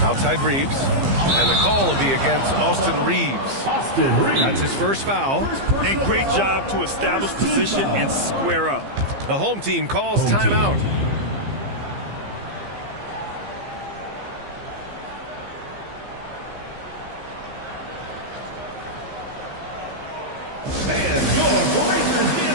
Outside Reeves. And the call will be against Austin Reeves. That's his first foul. And great job to establish position and square up. The home team calls timeout.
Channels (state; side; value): late; left; 15 ms